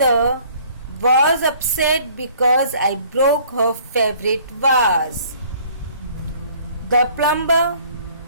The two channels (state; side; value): inverted; both; correlation -0.56